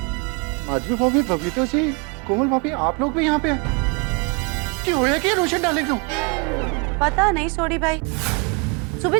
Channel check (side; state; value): left; quieter; 32.3 dB